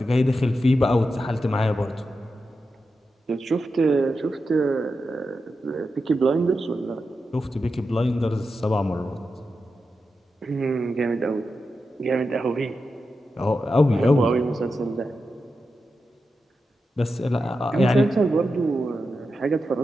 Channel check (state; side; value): normal; both; correlation 0.89